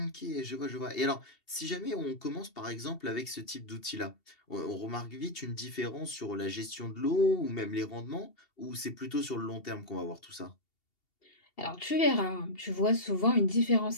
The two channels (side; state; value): right; late; 2.7 ms